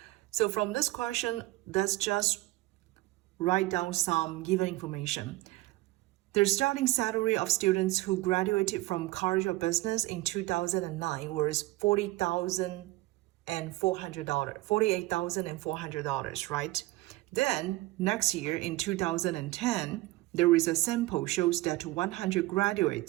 So from this question, let's just write down some given information. The starting salary of students who graduated from College of Business in 2009 was $48,400, right? Then, next year in 2010, there is a sample shows that 100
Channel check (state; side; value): quieter; left; 19.4 dB